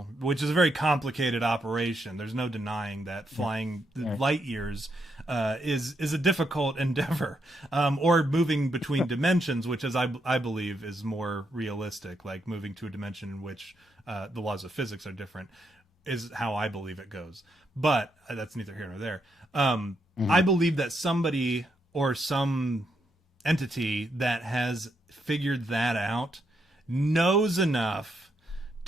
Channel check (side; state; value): both; normal; correlation 0.79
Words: which is a very complicated operation. There's no denying that flying light years is a difficult endeavor, or moving between dimensions, which is I believe is more realistic. Like moving to a dimension in which the laws of physics are different is how I believe it goes. But that's neither here nor there. I believe that somebody or some entity that has figured that out knows enough